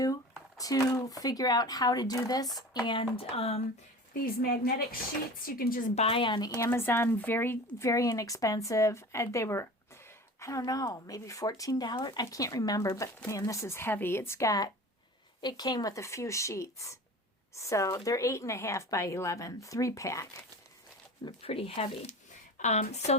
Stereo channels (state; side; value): normal; both; correlation 0.37